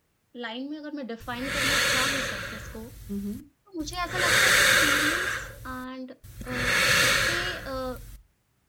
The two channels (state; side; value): identical; both; correlation 1.00